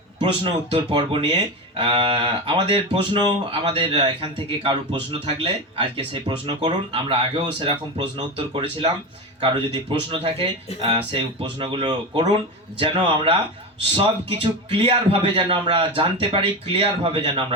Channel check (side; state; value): both; normal; correlation 0.20